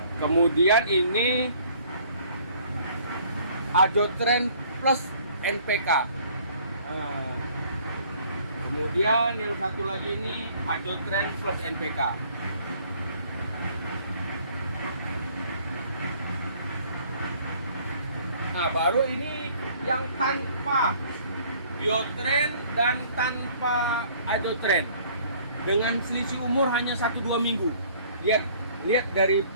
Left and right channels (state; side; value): inverted; both; correlation -0.57